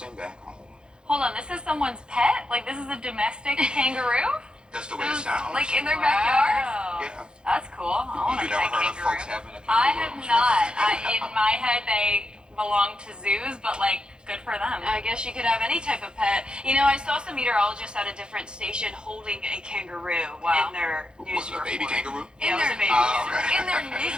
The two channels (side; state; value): left; late; 0.049 ms